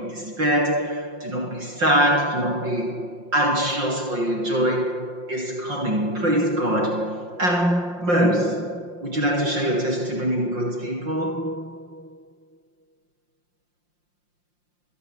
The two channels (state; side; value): late; left; 5.7 ms